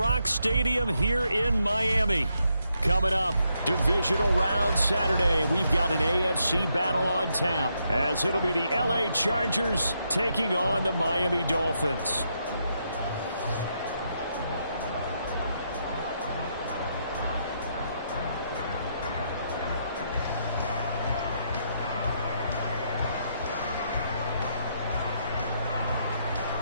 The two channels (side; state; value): both; inverted; correlation -0.78